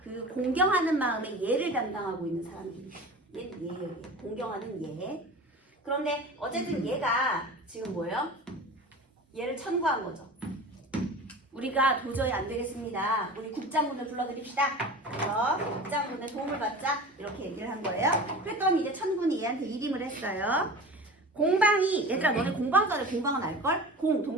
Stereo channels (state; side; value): normal; both; correlation 0.36